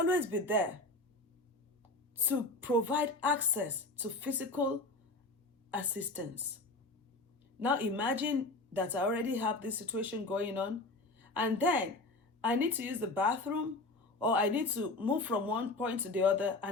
be there to provide access to physical assistance. Now imagine that I already have this situation going on, and then I need to use the bathroom, or I need to move from one point to the other,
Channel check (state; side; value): quieter; right; 3.0 dB